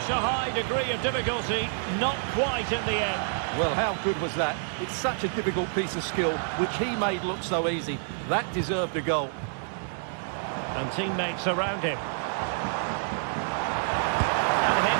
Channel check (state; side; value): silent; left; 56 dB below the other